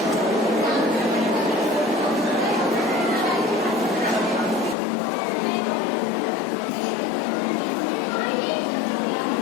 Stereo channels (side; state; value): right; drops out; at 4.8 s